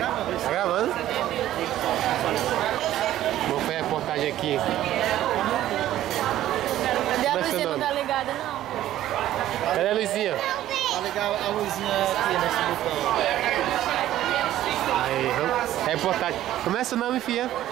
Tá gravando? Vou fazer a reportagem aqui. Cadê a Como é seu luzinha? Não nome? tá ligada, não. Cadê a luzinha? Tá legal a luzinha aqui nesse botão. Aí, vamos. Reportagem. Como é seu nome, filha?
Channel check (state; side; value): quieter; left; 13.3 dB